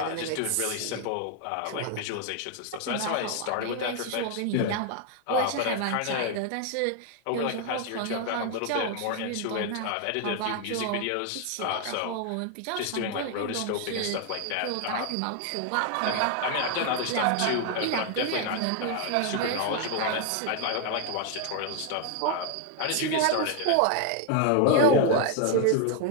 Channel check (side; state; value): both; different; correlation 0.00